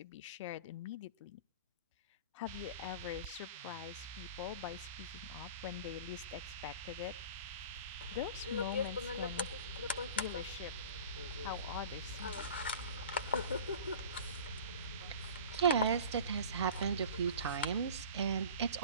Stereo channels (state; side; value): inverted; both; correlation -0.39